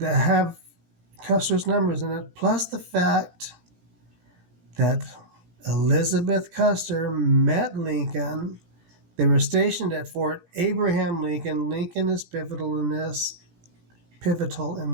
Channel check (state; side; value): late; left; 17 ms